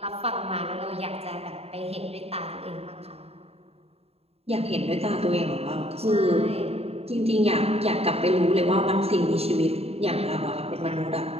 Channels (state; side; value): late; left; 0.29 ms